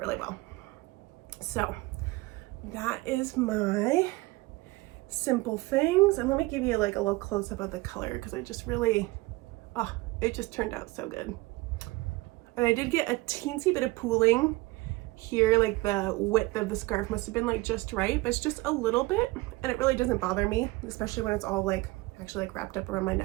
well. So that is my simple things. And let me give you like a little close up of the color because I just really, oh, it just turned out so good. And I did get a teensy bit of pooling here, like the width of the scarf must have been like just right, but it's just a little bit, and it really doesn't bother me, especially when it's all like actually like wrapped up around my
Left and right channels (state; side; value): quieter; left; 21.3 dB